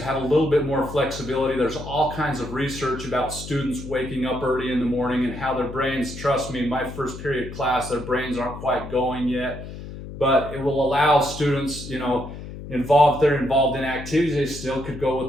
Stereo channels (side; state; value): left; noise; hum, 11 dB below the sound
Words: have a little bit more flexibility. There's all kinds of research about students waking up early in the morning and how their brains, trust me, in my first period class, their brains aren't quite going yet. But it will allow students, if they're involved in activities, they still could go